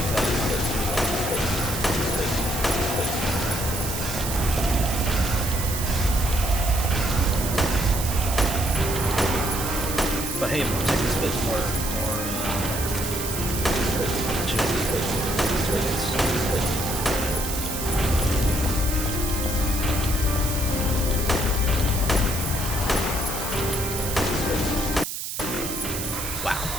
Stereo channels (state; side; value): noise; right; hiss, 5 dB below the sound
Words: But hey, more tickets, but more opportunity for tickets. Wow,